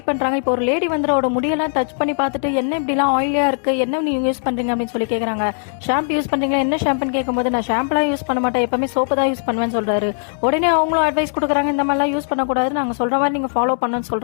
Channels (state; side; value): silent; right; digital silence